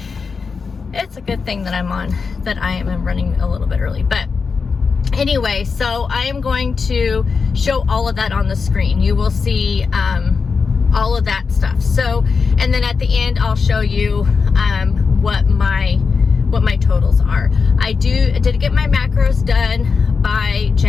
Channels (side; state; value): right; quieter; 5.1 dB